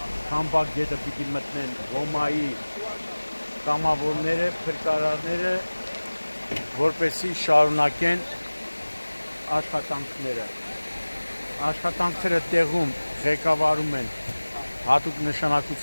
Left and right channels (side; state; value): both; inverted; correlation -1.00